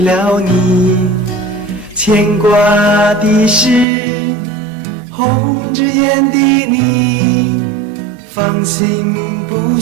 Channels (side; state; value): left; drops out; at 3.9 s